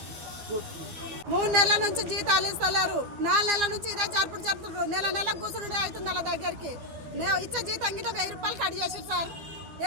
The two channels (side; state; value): left; late; 12 ms